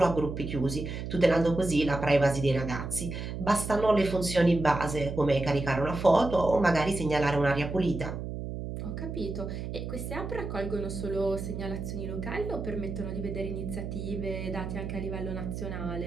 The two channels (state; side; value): noise; right; hum, 6 dB below the sound